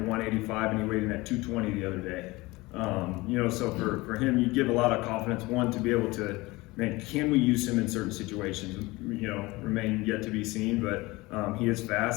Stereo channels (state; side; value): quieter; right; 21.7 dB